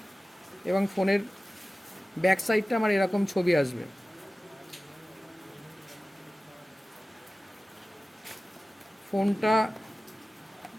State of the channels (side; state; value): both; normal; correlation 0.96